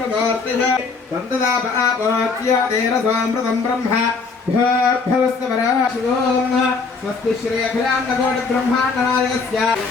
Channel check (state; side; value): quieter; right; 4.6 dB